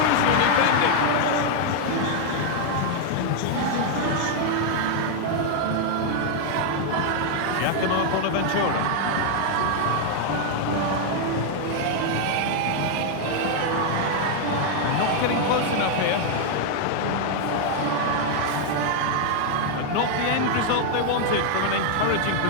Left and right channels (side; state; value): both; different; correlation 0.00